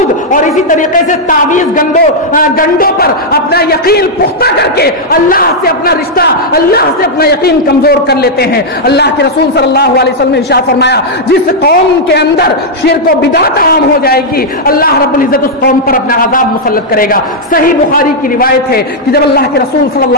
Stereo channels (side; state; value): both; normal; correlation -0.04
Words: اور اسی طریقے سے تعویذ گنڈوں پر اپنا یقین پختہ کر کے اللہ سے اپنا رشتہ، اللہ سے اپنا یقین کمزور کر لیتے ہیں. اللہ کے رسول صلی اللہ علیہ وسلم نے ارشاد فرمایا، جس قوم کے اندر شرک و بدعت عام ہو جائے گی اللہ رب العزت اس قوم پر اپنا عذاب مسلط کرے گا. صحیح بخاری کی روایت ہے کہ جب اللہ کے رسول صلی